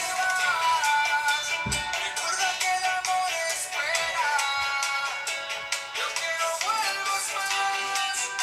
vas, recuerda que el amor espera. Yo quiero vuelvas más,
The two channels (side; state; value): both; identical; correlation 1.00